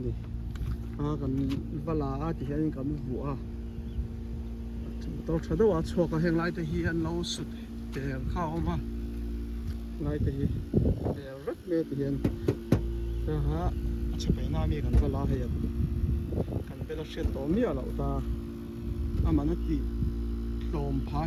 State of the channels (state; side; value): identical; both; correlation 1.00